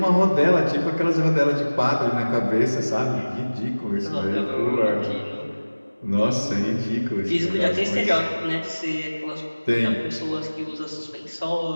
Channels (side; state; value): both; inverted; correlation -1.00